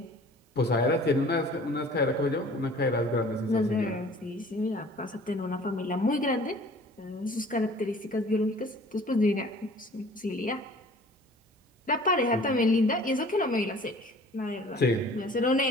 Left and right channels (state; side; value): normal; both; correlation 0.49